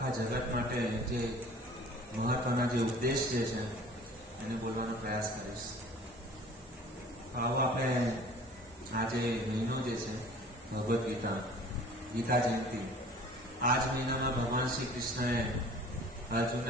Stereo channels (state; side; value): normal; both; correlation 0.47